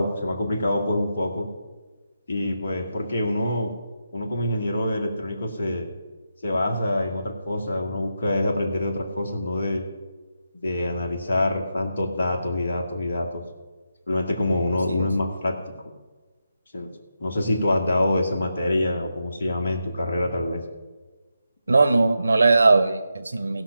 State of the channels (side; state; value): both; inverted; correlation -0.86